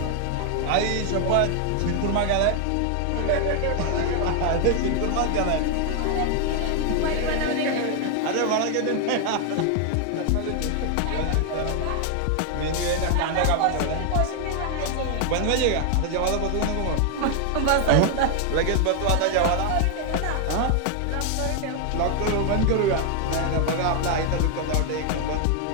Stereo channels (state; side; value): different; both; correlation 0.00